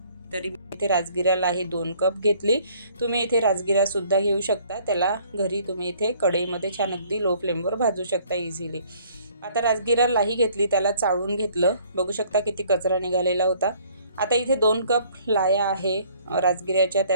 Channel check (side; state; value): both; inverted; correlation -0.59